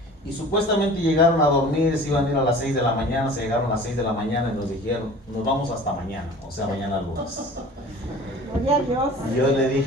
y supuestamente llegaron a dormir, se iban a ir a las 6 de la mañana, se llegaron a las 6 de la mañana y nos dijeron, nos vamos hasta mañana, o sea mañana lunes. Gloria a Dios. Y yo le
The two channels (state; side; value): normal; both; correlation 0.42